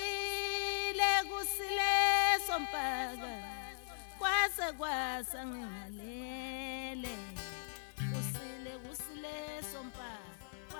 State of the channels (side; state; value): right; silent; digital silence